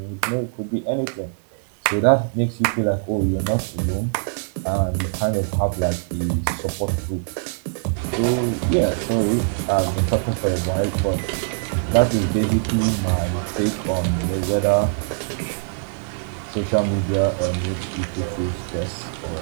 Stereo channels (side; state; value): left; silent; digital silence